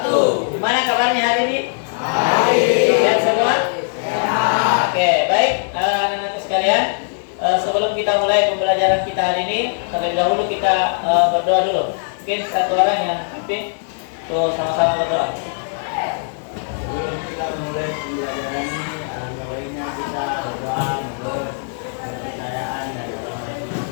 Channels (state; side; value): silent; right; digital silence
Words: Gimana kabarnya hari ini? Baik. Sehat semua? Sehat. Oke, baik anak-anak sekalian. Sebelum kita mulai pembelajaran kita hari ini, terlebih dahulu kita berdoa dulu. Mungkin satu orang yang pimpin, tuh sama-sama berdoa. Sebelum kita mulai pembelajaran ini, alangkah baiknya kita berdoa menurut kepercayaan dan agama